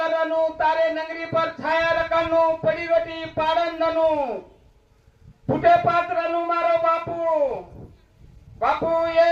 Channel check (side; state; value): both; identical; correlation 1.00